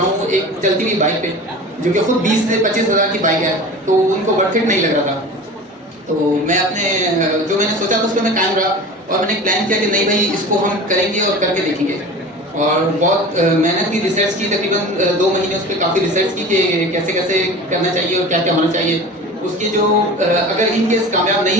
हूँ एक चलती हुई बाइक पे, जो कि खुद 20 से 25,000 की बाइक है, तो उनको वर्थ इट नहीं लग रहा था। तो मैं अपने जो मैंने सोचा था उस पर मैं कायम रहा और मैंने प्लान किया कि नहीं भाई इसको हम करेंगे और करके देखेंगे। और बहुत मेहनत की, रिसर्च की, तकरीबन 2 महीने उस पर काफ़ी रिसर्च की कि कैसे कैसे करना चाहिए और क्या क्या होना चाहिए। उसके जो अगर इन केस कामयाब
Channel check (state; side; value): normal; both; correlation 0.36